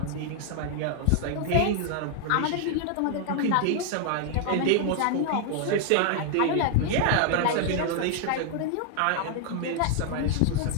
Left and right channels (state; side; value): different; both; correlation 0.00